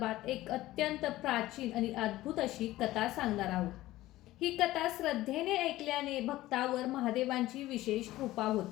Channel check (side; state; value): right; quieter; 16.4 dB